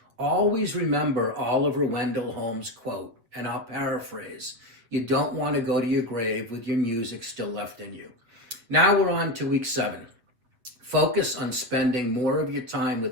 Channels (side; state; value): left; late; 8.0 ms